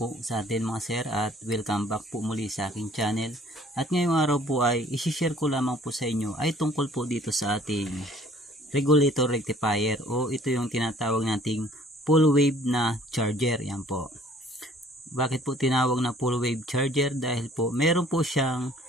sa atin mga sir at welcome back po muli sa aking channel. At ngayong araw po ay isi-share ko lamang po sa inyo ay tungkol po dito sa ating regulator rectifier o ito yung tinatawag nating full wave na charger. Yan po. Bakit po tinawag na full wave charger? Dahil po meron po siyang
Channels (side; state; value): both; normal; correlation 0.56